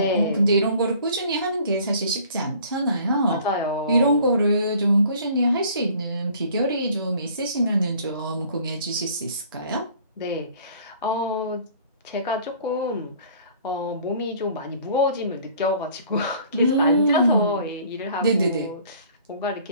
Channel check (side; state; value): both; inverted; correlation -0.52